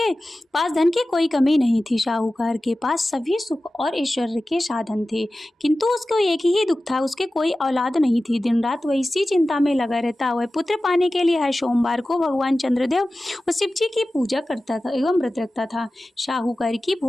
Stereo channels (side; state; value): both; normal; correlation 0.95